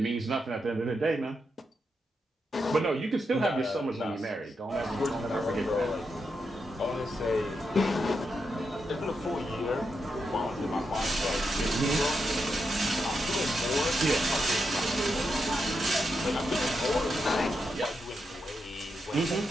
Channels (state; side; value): normal; both; correlation 0.85